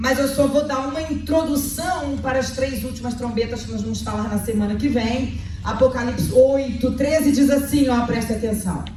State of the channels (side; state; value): both; identical; correlation 1.00